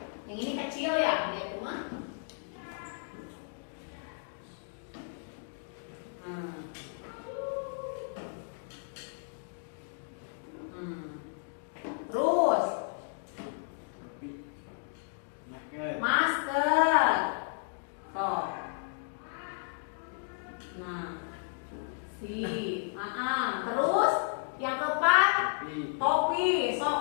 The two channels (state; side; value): silent; right; digital silence